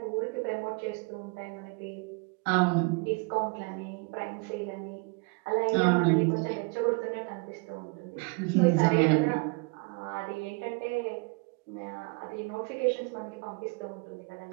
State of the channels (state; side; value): quieter; left; 30.7 dB